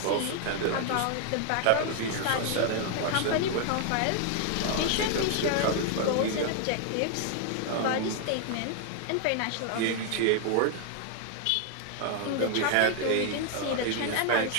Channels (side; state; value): both; different; correlation 0.00